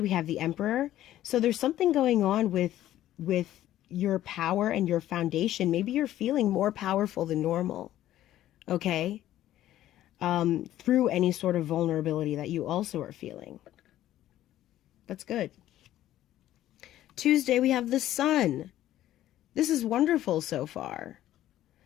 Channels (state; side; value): quieter; right; 13.3 dB